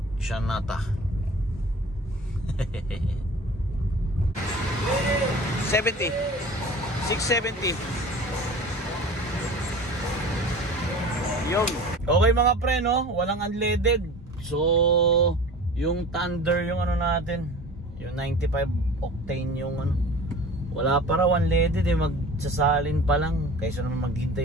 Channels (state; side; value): normal; both; correlation 0.40